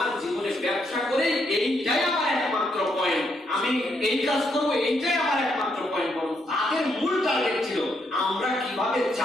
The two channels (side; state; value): both; normal; correlation 0.77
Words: জীবনে ব্যবসা করে এইটাই আমার একমাত্র পয়েন্ট, আমি এই কাজ করব এইটাই আমার একমাত্র পয়েন্ট। বরং তাদের মূল টার্গেট ছিল আমরা কিভাবে